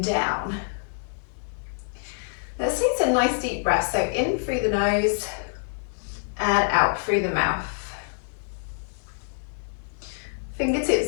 down. Let's take some nice deep breaths. So in through the nose and out through the mouth.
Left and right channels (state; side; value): silent; right; digital silence